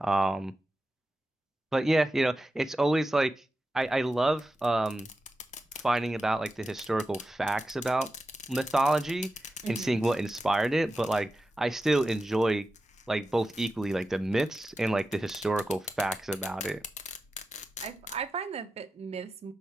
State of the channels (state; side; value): normal; both; correlation 0.92